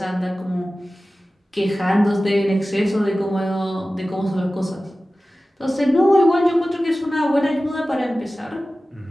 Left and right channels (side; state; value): both; normal; correlation 0.96